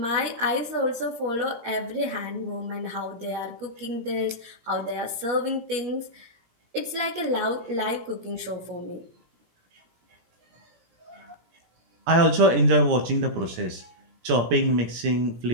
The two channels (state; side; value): late; left; 17 ms